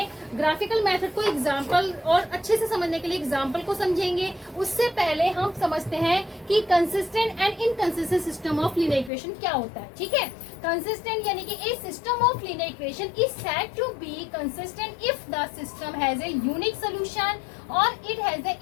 ग्राफिकल मेथड को एग्जाम्पल और अच्छे से समझने के लिए एग्जाम्पल को समझेंगे। उससे पहले हम समझते हैं कि consistent and inconsistent system of linear equation क्या होता है, ठीक है। कंसिस्टेंट यानी कि a system of linear equation is said to be consistent if the system has a unique solution और it has a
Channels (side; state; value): right; drops out; at 9.1 s